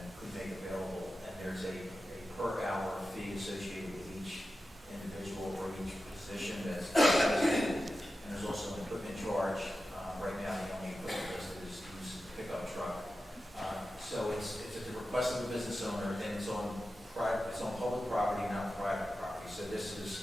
could make available. And there's a per hour fee associated with each individual or each position that's listed. And there's also an equipment charge. Right now, the only equipment listed is use pickup truck. So it's at the request of the business owner, and it's on public property, not private property. So this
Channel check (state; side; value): normal; both; correlation 0.93